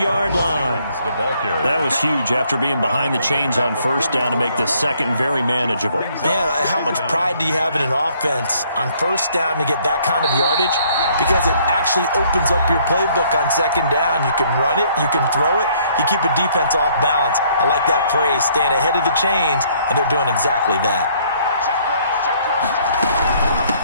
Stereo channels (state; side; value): inverted; both; correlation -0.64